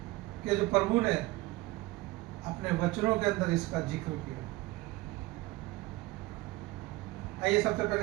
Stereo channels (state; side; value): quieter; left; 19.8 dB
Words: कि जो प्रभु ने अपने वचनों के अंदर इसका जिक्र किया। आइए सबसे